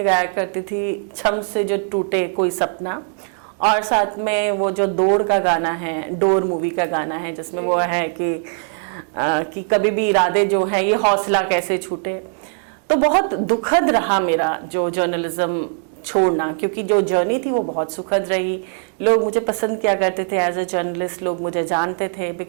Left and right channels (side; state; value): left; silent; 58 dB below the other